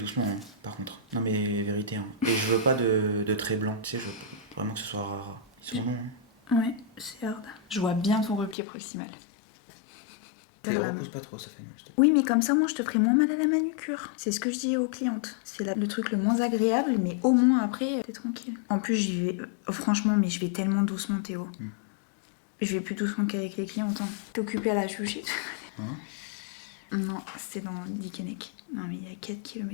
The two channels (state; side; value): drops out; right; at 8.6 s